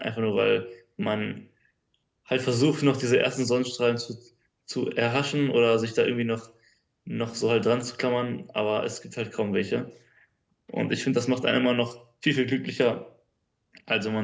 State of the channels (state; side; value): identical; both; correlation 1.00